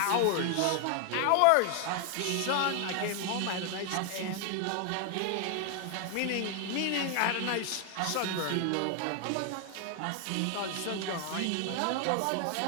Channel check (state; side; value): different; both; correlation 0.00